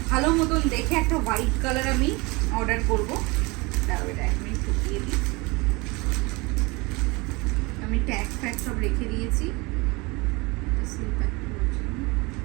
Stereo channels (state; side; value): quieter; left; 25.6 dB